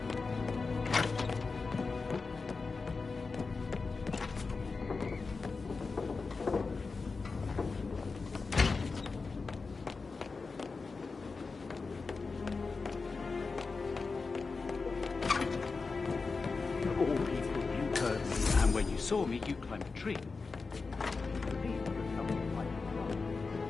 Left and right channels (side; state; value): right; quieter; 4.3 dB